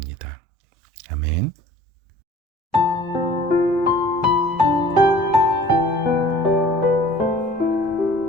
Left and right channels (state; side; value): normal; both; correlation 0.49